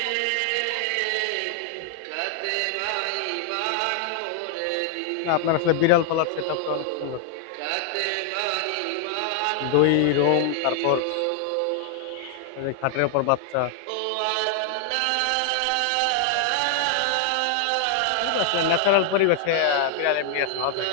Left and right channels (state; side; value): different; both; correlation 0.00